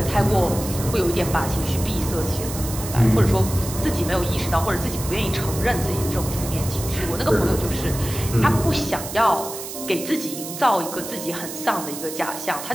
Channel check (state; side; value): noise; right; hiss, 9 dB below the sound